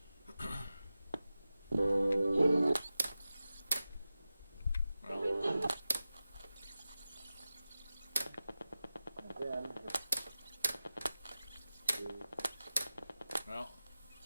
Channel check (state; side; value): inverted; both; correlation -0.94